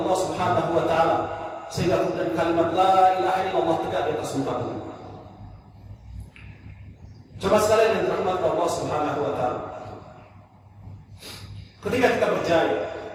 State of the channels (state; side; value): identical; both; correlation 1.00